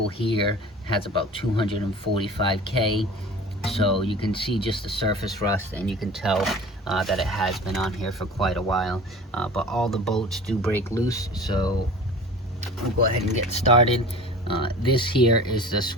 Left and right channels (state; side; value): normal; both; correlation 0.39